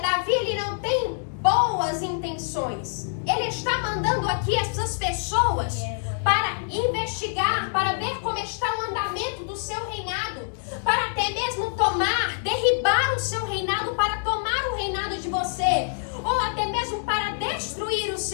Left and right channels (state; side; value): silent; right; 61 dB below the other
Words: ele não tem boas intenções. Ele está mandando aqui essas pessoas para investigar, para ver como está o andamento do seu reinado, para até mesmo derribar o seu reinado, para tomar o reinado de você, ou até mesmo para destruir o